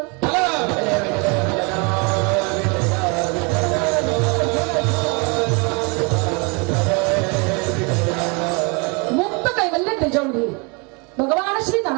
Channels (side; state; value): left; quieter; 31.6 dB